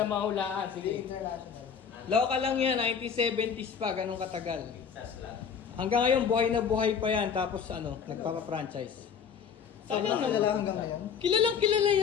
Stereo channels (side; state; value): right; quieter; 7.0 dB